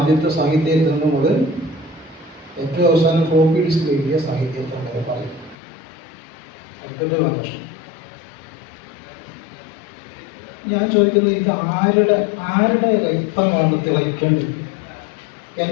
സാഹിത്യത്തിൽ മുതൽ ഏറ്റവും അവസാനം ഫ്ലോപ്പി ഡിസ്ക് എഴുതിയ സാഹിത്യത്തിൽ വരെ പറയും. അടുത്ത ലക്ഷണം ഞാൻ ചോദിക്കുന്നത്, ഇത് ആരുടെ രക്തമാണ് തിളയ്ക്കേണ്ടത്?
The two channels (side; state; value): right; drops out; at 5.6 s